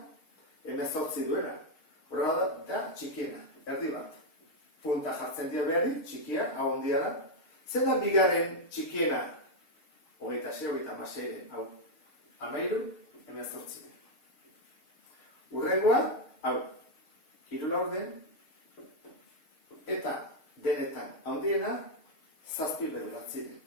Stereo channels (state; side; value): late; right; 6.5 ms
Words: Hemezortzi duena. Horren da txikiena, erdi bat. Punta jartzen dio behari, txikia, hau ondia da. Zein da bigarren txikiena? Hogeita sei, hogeita hamasei, hau. Hamairu, hemezortzi. Hurrengoa, hau. Hiru laurden. Eta denetan handiena, zazpi bederatzi.